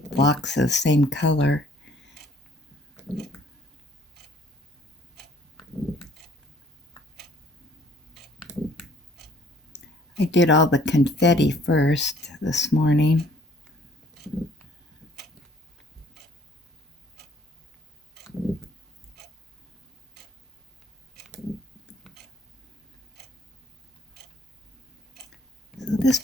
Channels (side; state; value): both; normal; correlation 0.58